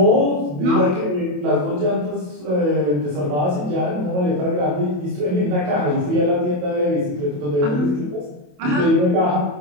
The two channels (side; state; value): left; late; 27 ms